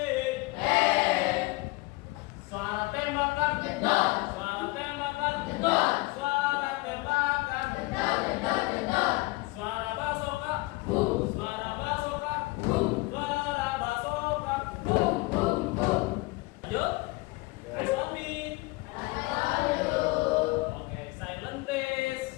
Suara tembakan, jedor. Suara tembakan, jedor. Suara tembakan, jedor, jedor, jedor. Suara basoka, boom. Suara basoka, boom. Suara basoka, boom, boom, boom. Lanjut. Eyes on me. Oke, silent please.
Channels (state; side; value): quieter; right; 23.0 dB